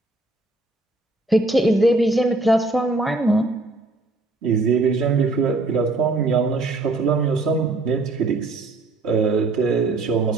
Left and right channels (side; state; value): left; quieter; 3.1 dB